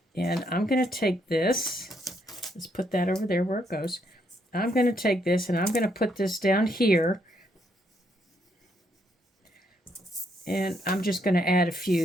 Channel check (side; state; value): both; normal; correlation 0.74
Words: And I'm going to take this. Let's put that over there where it goes. I'm going to take this and I'm going to put this down here. And I'm just going to add a